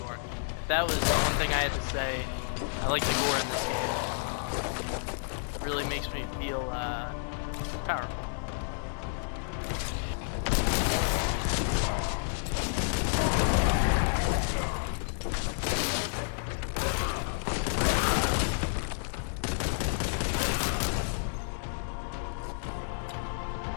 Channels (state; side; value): silent; right; digital silence